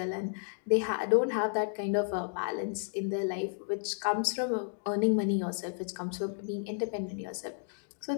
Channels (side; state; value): right; silent; digital silence